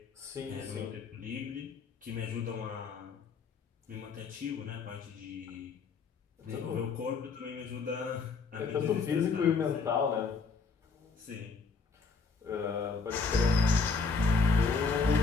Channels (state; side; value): quieter; right; 4.6 dB